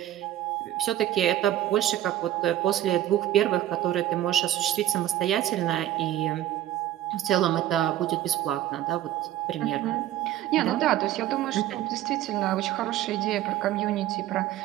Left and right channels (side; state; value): left; quieter; 13.1 dB